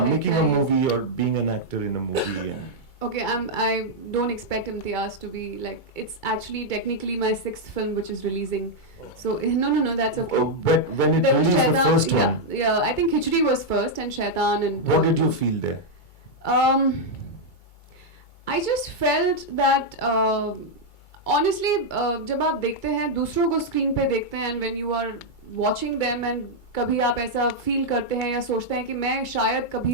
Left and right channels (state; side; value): late; right; 2.3 ms